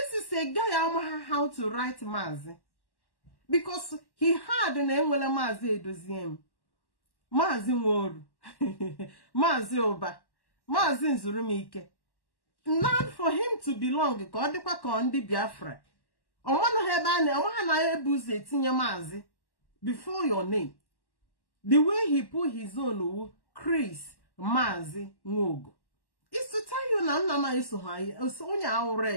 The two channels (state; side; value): late; right; 1.1 ms